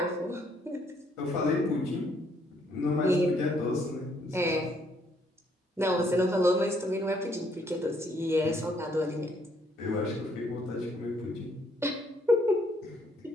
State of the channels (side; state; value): both; normal; correlation 0.68